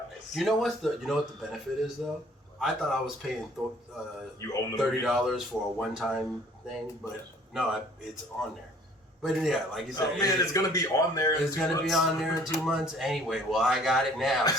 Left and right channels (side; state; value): both; normal; correlation 0.56